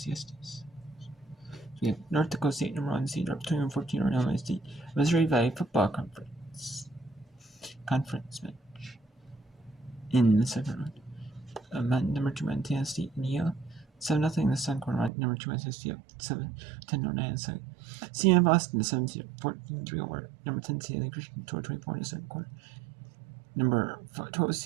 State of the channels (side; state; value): left; drops out; at 15.1 s